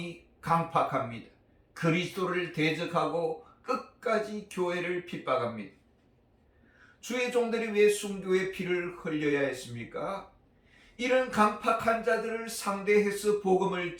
강팍합니다. 그리스도를 대적하고 끝까지 교회를 핍박합니다. 주의 종들이 왜 순교의 피를 흘려야 했습니까? 이런 강팍한 자들을 상대해서 복음을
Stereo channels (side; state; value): both; identical; correlation 1.00